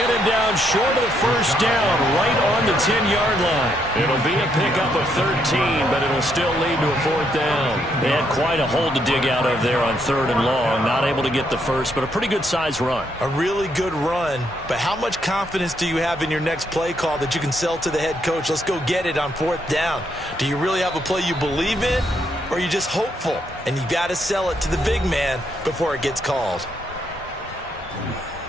him down short of the first down, right on the 10-yard line. It'll be a pickup of 13, but it'll still lead to a 4th down. They had quite a hole to dig out of there on 3rd and long. Not able to get the first, but a pretty good-sized run. A really good run, but how much confidence do you have in your next play call that you can sell to the head coach? Let's go get it on 4th down. Do you really have a play you believe in, or are you just hopeful? And you got to sell it to the big man before it gets called.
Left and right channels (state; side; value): normal; both; correlation 0.75